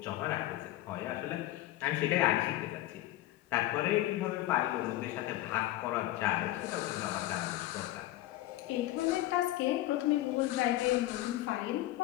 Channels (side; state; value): right; quieter; 15.7 dB